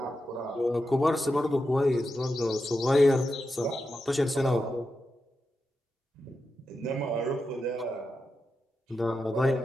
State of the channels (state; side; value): normal; both; correlation 0.88